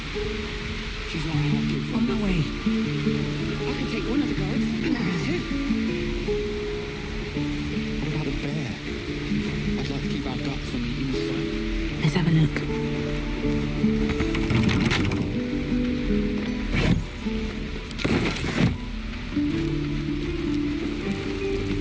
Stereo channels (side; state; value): both; identical; correlation 1.00